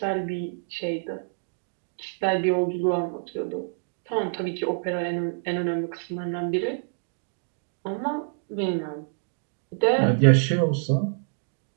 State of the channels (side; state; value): left; silent; digital silence